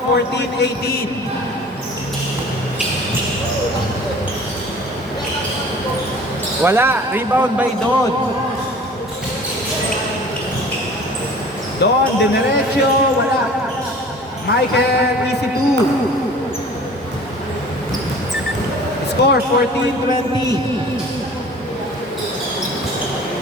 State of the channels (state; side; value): normal; both; correlation 0.45